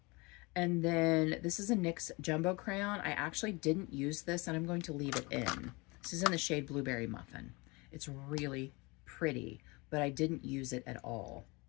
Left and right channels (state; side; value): quieter; right; 26.2 dB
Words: And then this is a NYX Jumbo Crayon. I actually didn't use this, and I'm going to leave it in. This is in the shade Blueberry Muffin. It's really pretty, but I didn't use it at all.